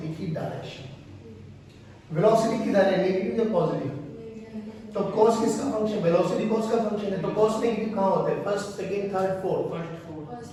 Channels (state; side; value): identical; both; correlation 1.00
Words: की डायरेक्शन। वेलोसिटी किधर है, नेगेटिव या पॉजिटिव? तो cos किसका फंक्शन? वेलोसिटी cos का फंक्शन है, तो cos नेगेटिव कहां होता है? First, second, third, fourth,